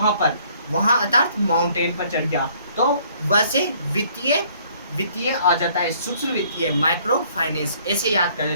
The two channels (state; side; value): inverted; both; correlation -0.61